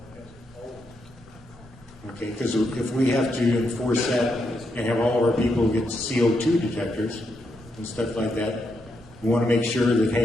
it has always Okay, because if we have to enforce that and have all of our people get CO2 detectors and stuff like that, we want to make sure that,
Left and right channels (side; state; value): both; normal; correlation 0.81